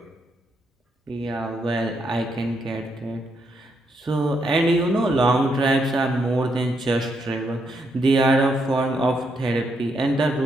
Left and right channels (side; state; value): both; normal; correlation 0.78